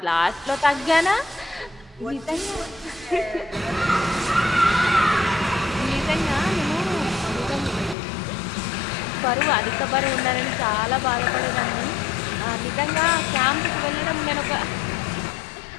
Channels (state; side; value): drops out; right; at 8.0 s